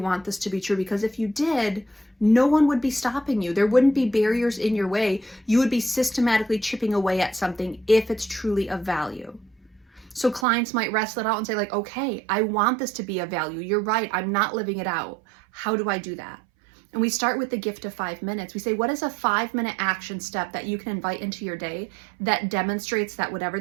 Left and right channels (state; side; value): drops out; left; at 10.5 s